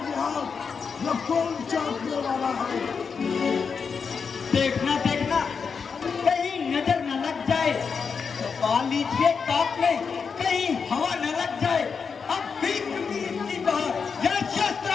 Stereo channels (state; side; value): quieter; right; 5.7 dB